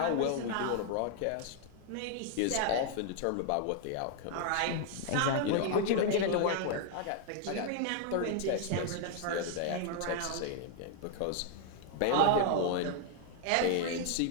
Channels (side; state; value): both; different; correlation 0.00